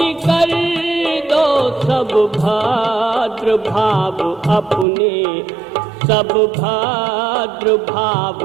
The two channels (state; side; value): drops out; left; at 4.9 s